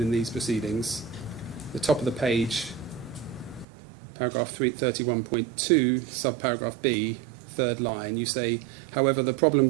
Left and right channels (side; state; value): left; drops out; at 3.7 s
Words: in these proceedings. The top of the page, paragraph 31.2, subparagraph B, third line, you say, however, the problem